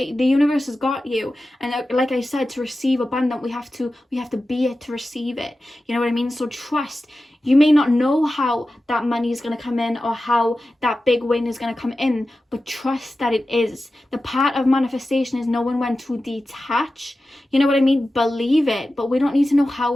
the universe has got you, and like I said, to receive abundant, we have to be it to receive it. You know what I mean? So trust. You may not know how that money is going to come in, or how that big win is going to come in, but trust that it is. The part of manifestation is knowing when to detach. You know what I mean? Believe it, but we don't need to know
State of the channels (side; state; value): both; normal; correlation 0.94